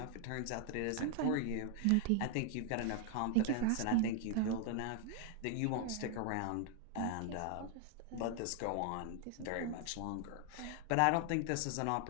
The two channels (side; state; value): both; different; correlation 0.00